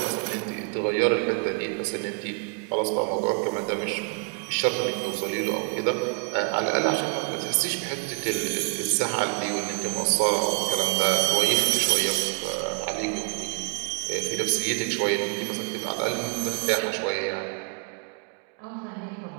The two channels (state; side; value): quieter; left; 38.5 dB